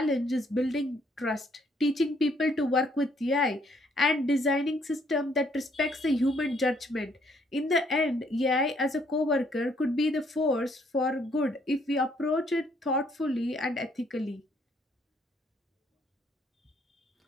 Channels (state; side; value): normal; both; correlation 0.67